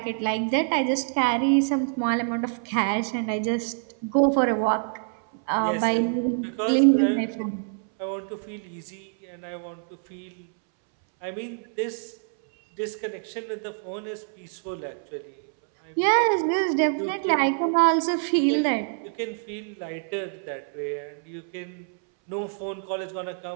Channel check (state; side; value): silent; left; 61 dB below the other